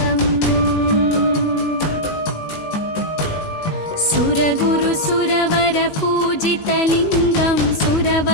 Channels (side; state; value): right; late; 19 ms